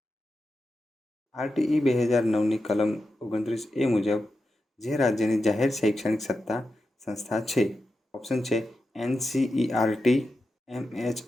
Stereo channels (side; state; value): both; normal; correlation 0.90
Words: RTE 2009ની કલમ 29A મુજબ જે રાજ્યની જાહેર શૈક્ષણિક સત્તા સંસ્થા છે. ઓપ્શન છે NCERT,